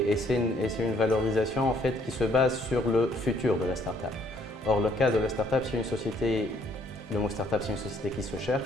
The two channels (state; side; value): normal; both; correlation 0.65